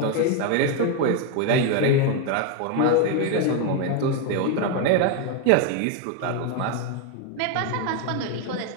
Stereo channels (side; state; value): both; different; correlation 0.01